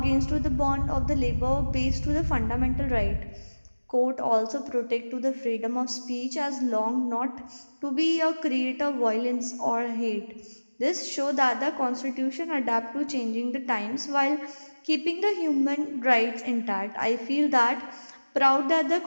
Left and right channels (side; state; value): both; inverted; correlation -1.00